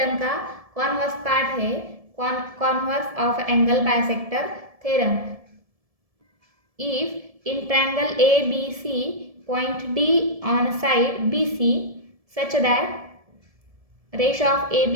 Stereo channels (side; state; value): left; late; 1.7 ms